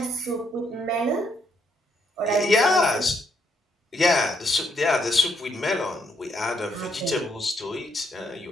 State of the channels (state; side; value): normal; both; correlation 0.74